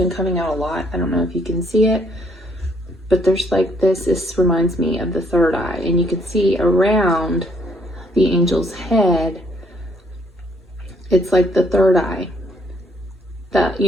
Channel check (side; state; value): both; normal; correlation 0.68